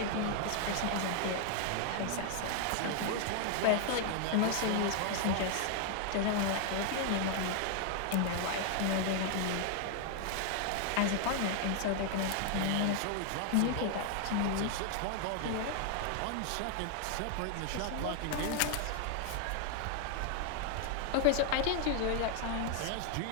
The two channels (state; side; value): different; both; correlation 0.00